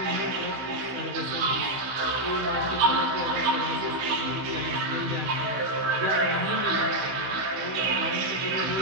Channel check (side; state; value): left; late; 16 ms